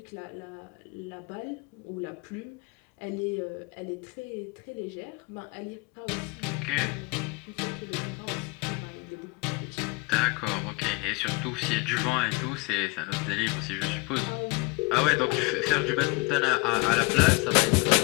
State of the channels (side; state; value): right; quieter; 26.0 dB